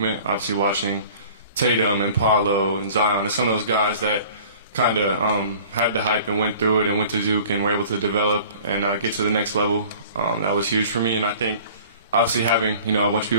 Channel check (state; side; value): inverted; both; correlation -0.47